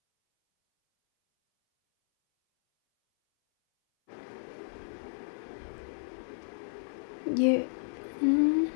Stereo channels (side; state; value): right; silent; 56 dB below the other